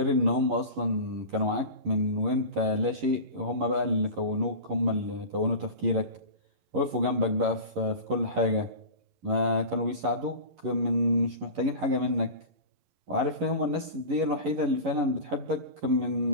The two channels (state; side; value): late; left; 11 ms